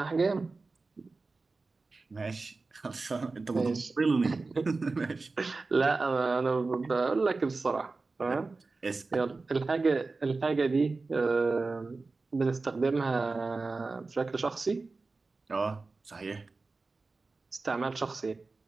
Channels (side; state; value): left; quieter; 3.8 dB